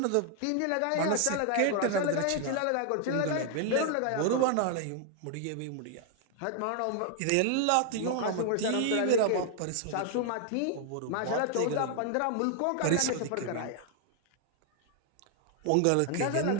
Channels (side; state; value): both; different; correlation 0.00